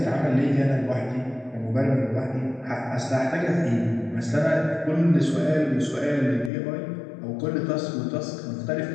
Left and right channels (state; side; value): drops out; right; at 6.5 s